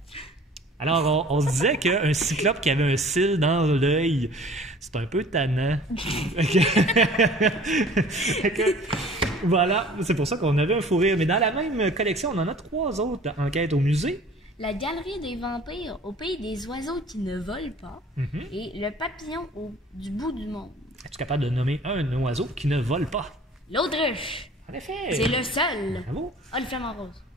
Alors, on se disait qu'un cyclope qui avait un cil dans l'œil, c'est un peu tannant. Fait que, voilà, c'est pour ça qu'on avait un fou rire. Mais dans la même collection, on en a 3 autres enquêtes au musée. La galerie des vampires au pays des oiseaux qui ne volent pas. Et le papillon du bout du monde. Es-tu capable de nommer un oiseau qui ne vole pas? L'autruche. En effet! C'est le seul. Bravo! Ah, le flamant rose.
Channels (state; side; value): normal; both; correlation 0.48